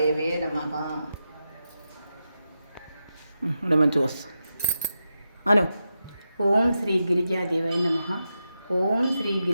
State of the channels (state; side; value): inverted; both; correlation -0.89